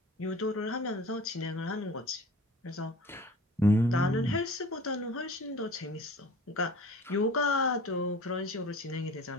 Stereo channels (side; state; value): both; normal; correlation 0.43